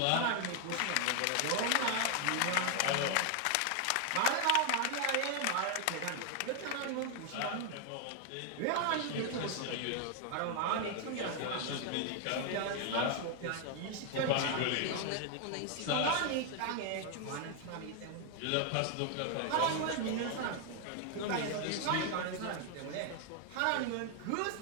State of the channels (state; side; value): different; both; correlation 0.00